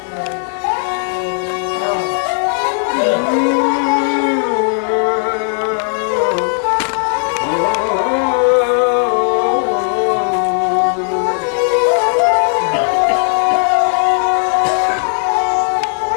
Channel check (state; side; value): silent; right; digital silence